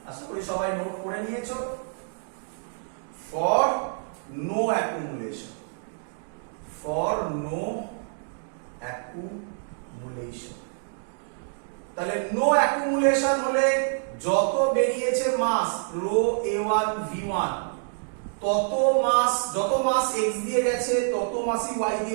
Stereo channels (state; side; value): silent; left; digital silence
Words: আশা করি সবাই নোট করে নিয়েছো। For no accumulation, for no accumulation. তাহলে নো অ্যাকুমুলেশন হলে যত বেরিয়েছে মাস রো a1 v1, তত মাস, যত মাস x দিয়ে গেছে তত মাসই y